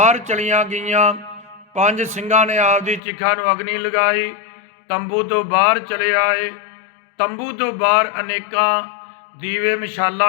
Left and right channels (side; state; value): right; drops out; at 3.0 s